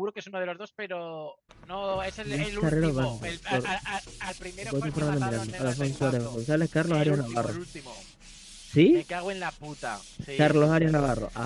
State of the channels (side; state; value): both; identical; correlation 1.00